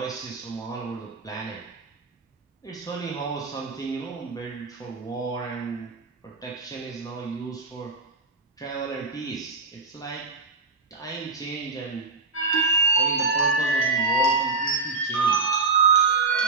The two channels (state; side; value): quieter; left; 4.0 dB